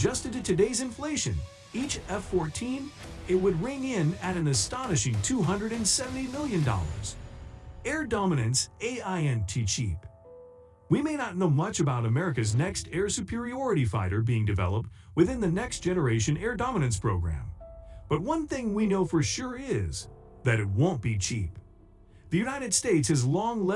to today's inflation, each F-14, it would ring in at an astonishing $270 million. Air dominance ain't cheap. We may not know much about America's next air superiority fighter being developed within the Next Generation Air Dominance program. But one thing we know for sure is that it won't be cheap. The United States has long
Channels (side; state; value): both; identical; correlation 1.00